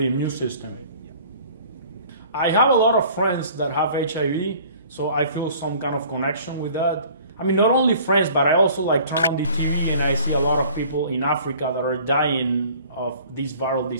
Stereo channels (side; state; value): both; inverted; correlation -0.50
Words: immune system. I have a lot of friends that have HIV, so I feel some kind of connection with that. I mean, not only friends, but I also turn on the TV and I see a lot of people in Africa that are dying of this viral